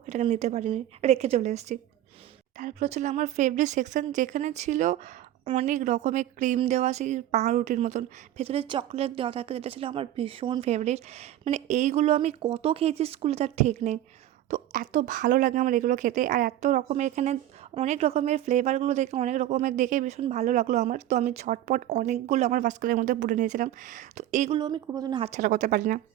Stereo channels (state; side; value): quieter; left; 13.0 dB